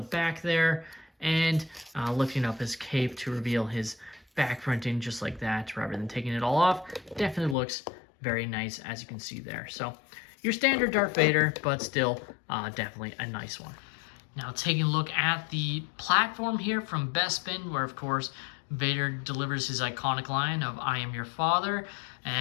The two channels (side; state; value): right; drops out; at 7.6 s